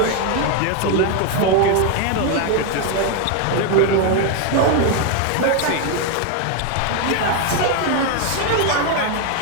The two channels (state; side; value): different; both; correlation 0.01